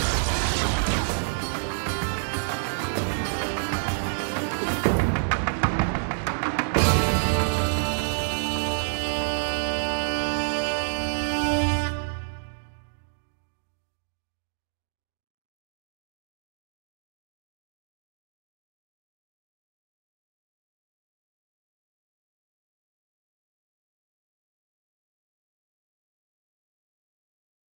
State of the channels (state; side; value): silent; left; digital silence